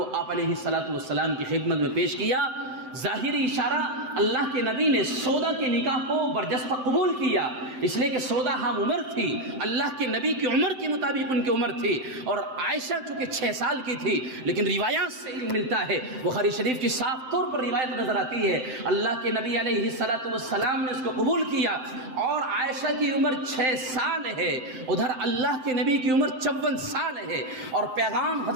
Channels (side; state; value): left; late; 7.8 ms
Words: آپ علیہ الصلاۃ والسلام کی خدمت میں پیش کیا۔ ظاہری اشارہ، اللہ کے نبی نے سودا کے نکاح کو برجستہ قبول کیا، اس لیے کہ سودا ہم عمر تھی، اللہ کے نبی کی عمر کے مطابق ان کی عمر تھی، اور عائشہ چونکہ 6 سال کی تھی، لیکن روایات سے علم ملتا ہے، بخاری شریف کی صاف طور پر روایت نظر آتی ہے، اللہ کے نبی علیہ الصلاۃ والسلام نے اس کو قبول کیا، اور عائشہ کی عمر 6 سال ہے، ادھر اللہ کے نبی کی عمر 54 سال ہے، اور پیغام